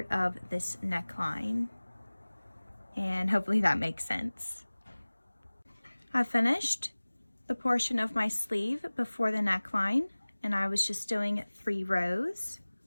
of this neckline. And hopefully that makes sense. I finished the portion of my sleeve before the neckline, and I was just doing 3 rows.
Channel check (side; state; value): both; inverted; correlation -1.00